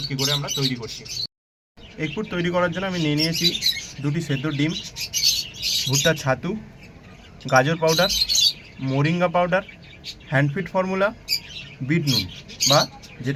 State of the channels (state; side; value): identical; both; correlation 1.00